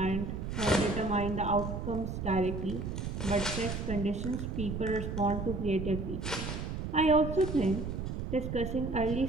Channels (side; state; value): right; noise; rumble, 4 dB below the sound